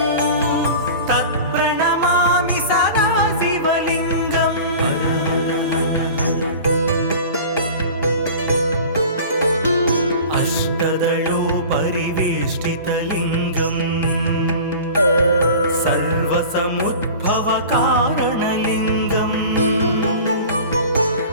तत्प्रणमामि सदा शिवलिङ्गम् अष्टदलोपरिवेष्टितलिङ्गम् सर्वसमुद्भवकारणलिङ्गम्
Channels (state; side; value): inverted; both; correlation -0.39